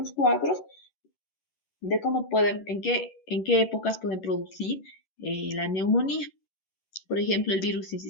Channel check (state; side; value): late; right; 11 ms